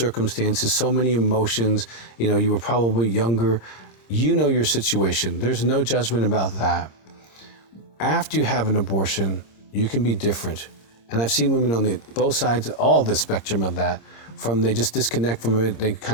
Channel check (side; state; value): right; late; 26 ms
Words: so many emotions. You know, you were probably younger. You know your situation. There's no judgment about that. After you have an abortion, you can be different. And I've seen women on both sides, all the spectrum of that, from they just disconnect from it, they